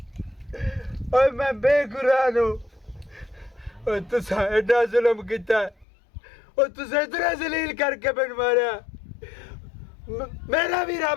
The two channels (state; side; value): drops out; right; at 5.9 s